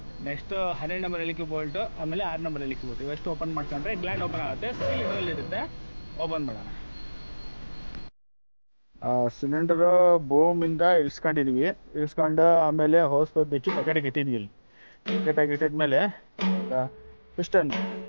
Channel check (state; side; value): inverted; both; correlation -1.00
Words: ನೆಕ್ಸ್ಟ್ 12 ನಂಬರ್ ಎಲಿಕೆ ಬೋಲ್ಟು, ಆಮೇಲೆ 6 ನಂಬರ್ ಎಲಿಕೆ ಬೋಲ್ಟ್, ಇವೆಷ್ಟು ಓಪನ್ ಮಾಡ್ಕೊಂಡ್ರೆ ಗ್ಲ್ಯಾಂಡ್ ಓಪನ್ ಆಗುತ್ತೆ. ಸ್ಟೀಲ್ ಇದರಲ್ಲಿ ಇರುತ್ತೆ. ಓಪನ್ ಮಾಡೋಣ. ಸಿಲಿಂಡರ್ ಬೋಮಿಂದ ಇಳಿಸ್ಕೊಂಡಿದ್ವಿ. ಇಳಿಸ್ಕೊಂಡು ಆಮೇಲೆ ಹೋಸ್ ಬಿಚ್ಚಿ ಪ್ಯಾಕೆಟಿಗೆ ಇಟ್ಟಿದ್ವಿ. ಪ್ಯಾಕೆಟಾಗಿ ಇಟ್ಟಿದ್ಮೇಲೆ ಪಿಸ್ಟನ್